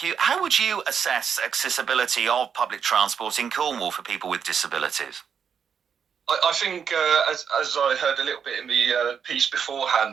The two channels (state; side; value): quieter; left; 7.2 dB